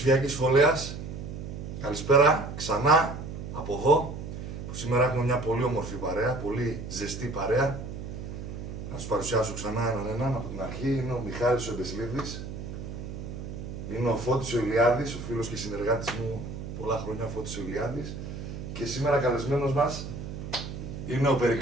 φωλέας, καλησπέρα ξανά από εδώ, που σήμερα έχουμε μια πολύ όμορφη παρέα, πολύ ζεστή παρέα. Να σας παρουσιάσω ξανά έναν από την αρχή. Είναι ο Μιχάλης ο Εμπεσλίδης, είναι ο Φώτης ο Ηλιάδης, ο φίλος και συνεργάτης μου πολλά χρόνια, ο Φώτης ο Ηλιάδης. Και σήμερα καλεσμένος μας είναι ο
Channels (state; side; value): noise; right; hum, 8 dB below the sound